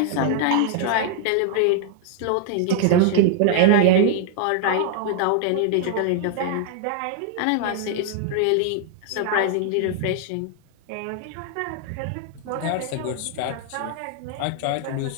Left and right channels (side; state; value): both; different; correlation 0.00